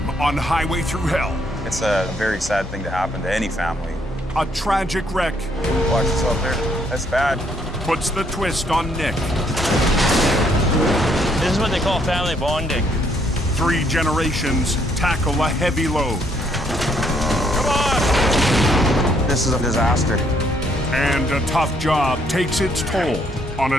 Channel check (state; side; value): normal; both; correlation 0.69